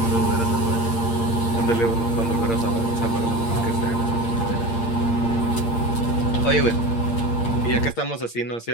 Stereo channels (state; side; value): late; right; 8.7 ms